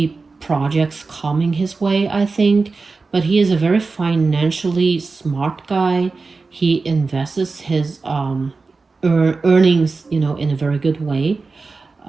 projects coming his way, I think. But he is a very financially smart guy. He invests his earnings, in a very good way,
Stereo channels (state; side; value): quieter; left; 4.1 dB